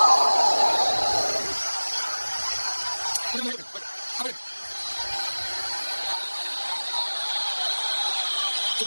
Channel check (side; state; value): both; inverted; correlation -1.00